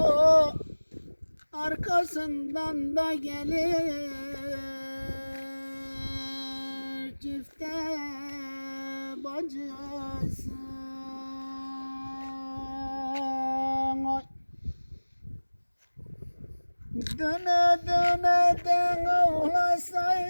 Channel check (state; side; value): inverted; both; correlation -1.00